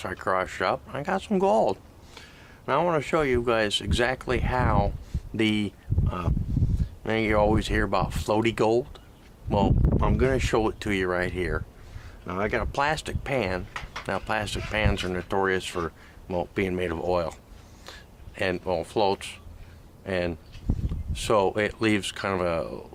I crushed up, I got some gold. Now I want to show you guys exactly how the, you always hear about floaty gold. Well, I'm going to show it to you right here. Now I got a plastic pan. Now plastic pans are notorious for, well, being made of oil and, well, floats, and so it leaves kind of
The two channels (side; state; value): both; identical; correlation 1.00